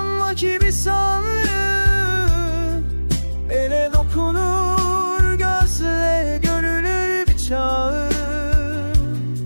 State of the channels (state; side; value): inverted; both; correlation -1.00